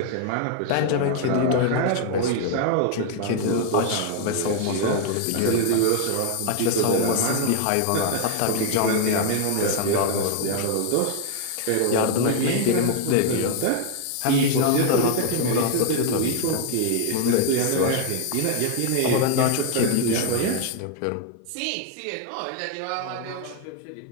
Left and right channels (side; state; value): both; different; correlation 0.00